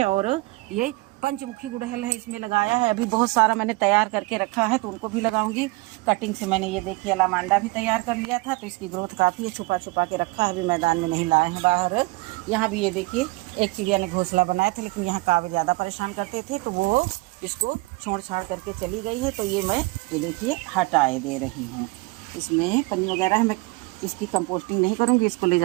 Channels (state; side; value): quieter; left; 23.8 dB